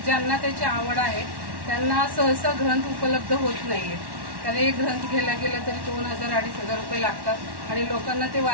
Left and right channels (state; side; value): late; left; 1.1 ms